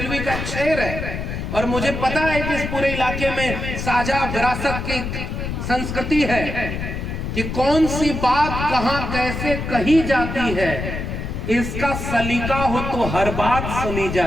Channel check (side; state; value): left; noise; rumble, 4 dB below the sound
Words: का शेर है, और मुझे पता है कि इस पूरे इलाके में साझा विरासत की संस्कृति है कि कौन सी बात कहां कैसे कही जाती है, इसका सलीका हो तो हर बात सुनी